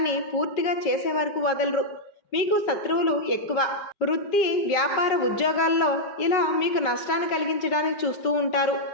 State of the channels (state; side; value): late; right; 5.3 ms